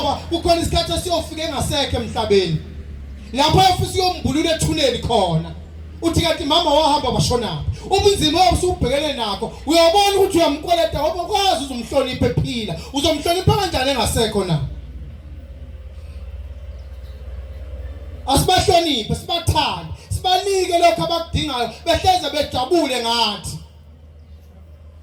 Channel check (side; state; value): both; identical; correlation 1.00